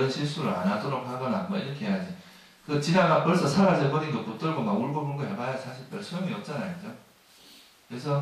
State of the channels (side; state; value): both; identical; correlation 1.00